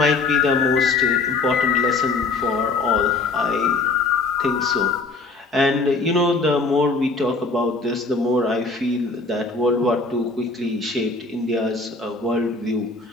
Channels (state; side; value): quieter; right; 3.8 dB